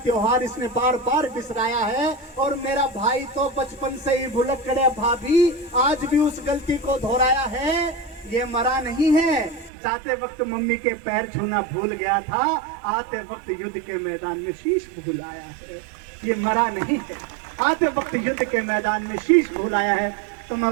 त्योहार इसने बार बार बिसराया है। और मेरा भाई तो बचपन से ही भुलक्कड़ है भाभी, आज भी उस गलती को दोहराया है। ये मरा नहीं है, जाते वक्त मम्मी के पैर छूना भूल गया था, आते वक्त युद्ध के मैदान में शीश भूल आया है। ये मरा नहीं है, आते वक्त युद्ध के मैदान में शीश भूल आया है। तो मैं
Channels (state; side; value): drops out; left; at 9.7 s